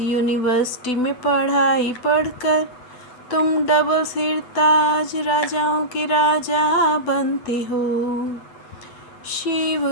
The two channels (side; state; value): right; late; 8.0 ms